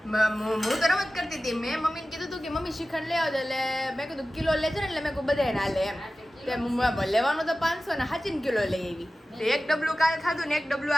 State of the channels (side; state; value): both; normal; correlation 0.95